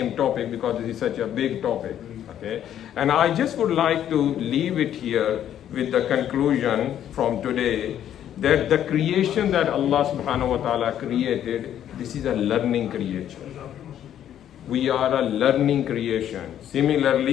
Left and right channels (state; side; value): quieter; right; 10.5 dB